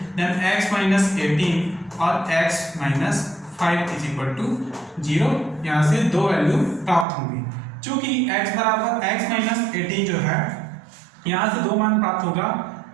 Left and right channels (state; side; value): drops out; left; at 7.1 s